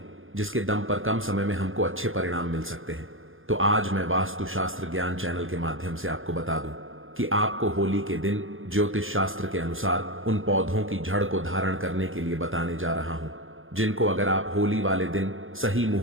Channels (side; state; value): left; late; 0.59 ms